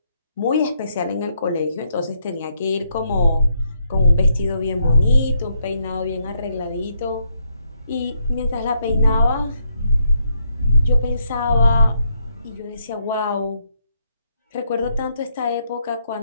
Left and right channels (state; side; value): inverted; both; correlation -0.76